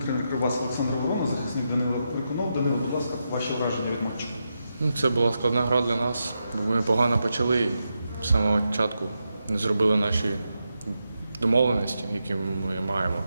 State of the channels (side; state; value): both; inverted; correlation -0.86